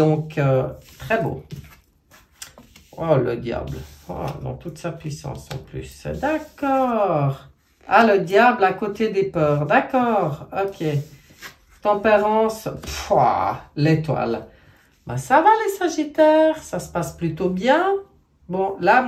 très beau. Oh, le diable. Oh, dans toute sa puissance en plus. D'accord. Ah, le diable à côté des peurs. D'accord. Ok. Tempérance. L'étoile. Ben, ça va les Sagittaires. Ça se passe plutôt bien. Bon, là,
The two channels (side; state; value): both; identical; correlation 1.00